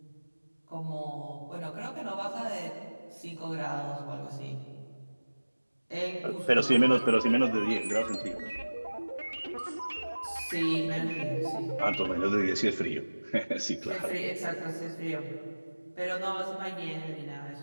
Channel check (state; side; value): inverted; both; correlation -1.00